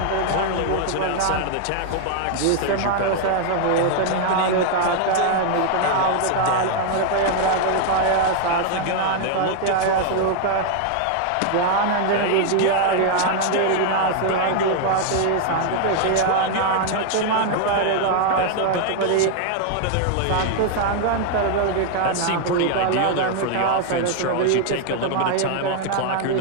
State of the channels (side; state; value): both; different; correlation 0.00